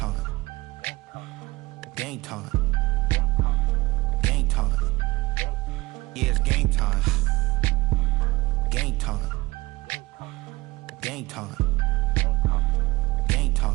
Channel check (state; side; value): quieter; left; 20.8 dB